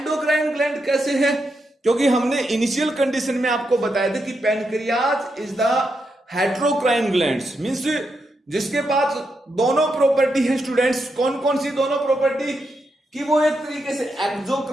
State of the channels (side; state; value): both; normal; correlation 0.83